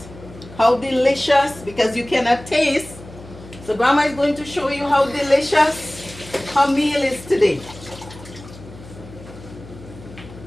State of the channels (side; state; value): left; noise; hum, 17 dB below the sound